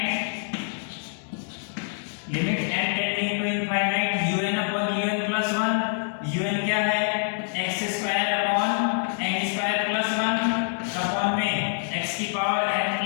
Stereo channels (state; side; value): silent; right; 61 dB below the other